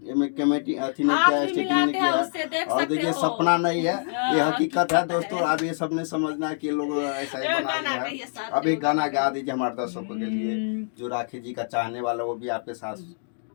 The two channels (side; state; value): right; silent; digital silence